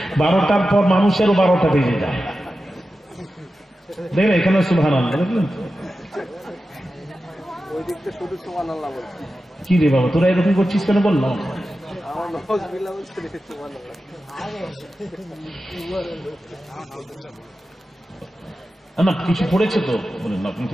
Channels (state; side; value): normal; both; correlation 0.92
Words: 12টার পর মানুষেরও 12টা বেজে যায়। দেখলেন এখানে সুবহানাল্লাহ, দেখলেন কি রে বাবা, তোরা এরকম করছিস কেন? বললাম না, কিছু পড়েছে তো বলেন আপনি,